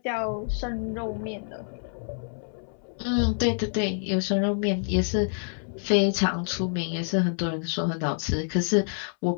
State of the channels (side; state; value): right; silent; 60 dB below the other